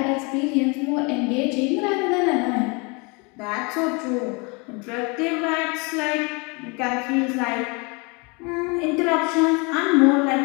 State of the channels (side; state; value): right; quieter; 30.0 dB